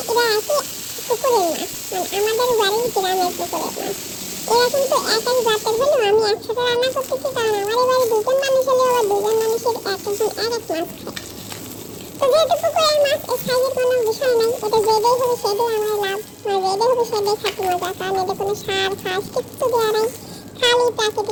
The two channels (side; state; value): both; identical; correlation 1.00